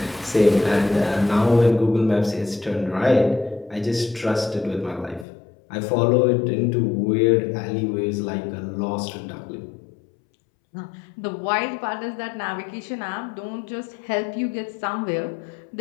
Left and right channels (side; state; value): right; drops out; at 5.2 s